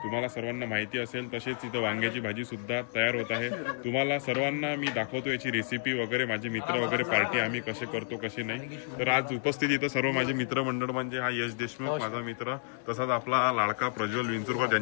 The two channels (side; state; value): right; silent; digital silence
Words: तुम्हाला सर्वांना माहिती असेल। तसेच इथं वांग्याची भाजी सुद्धा तयार होत आहे। तुम्हाला सर्वांना मी दाखवतो याची रेसिपी वगैरे, माझे मित्र वगैरे पार्टी आम्ही कसे करतो कसे नाही। तर आज उपस्थित इथं सर्व माझे मित्रमंडळ म्हणजे हा यश देशमुख माझा मित्र, तसाच आपला लाडका प्रज्वल विंचुरकर